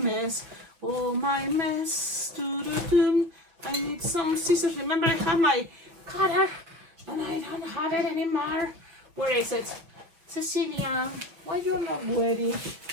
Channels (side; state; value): left; late; 6.1 ms